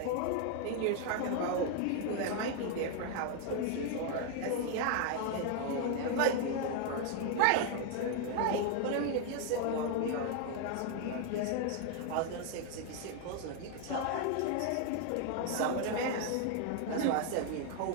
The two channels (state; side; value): different; both; correlation 0.00